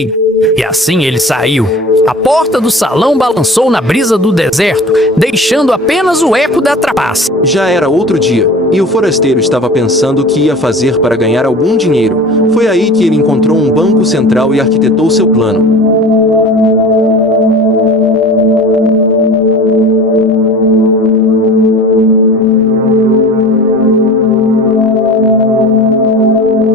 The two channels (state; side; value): normal; both; correlation 0.39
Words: E assim ele saiu. A porta do salão balançou na brisa do deserto, deixando apenas o eco da trapaça. Já era outro dia, e o forasteiro estava pensando o que ia fazer para ganhar algum dinheiro. Foi aí que ele encontrou um banco central e arquitetou seu plano.